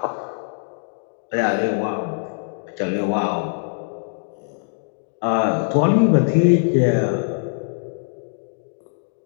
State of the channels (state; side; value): silent; right; digital silence